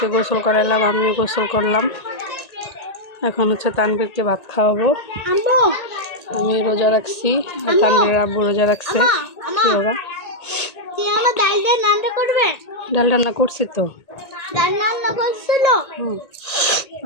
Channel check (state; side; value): late; right; 1.9 ms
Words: গোসল করাইলাম, আমিও গোসল করলাম। এখন হচ্ছে তানবীরকে ভাত খাওয়াবো। আমি রোজা রাখছি আর তানবীরের আব্বু রোজা রাখছে। কি বাবা? ডাল রান্না করছি তো।